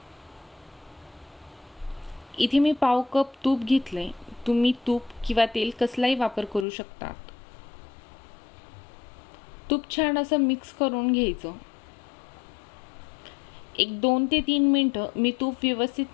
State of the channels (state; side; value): drops out; right; at 6.7 s